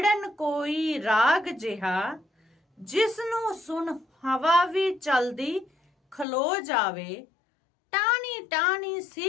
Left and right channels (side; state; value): right; drops out; at 6.2 s